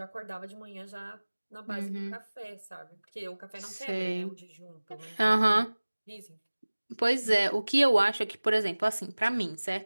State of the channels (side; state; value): both; inverted; correlation -1.00